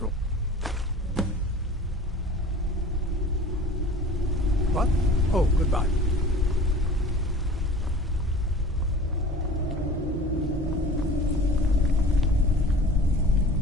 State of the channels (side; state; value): both; normal; correlation 0.42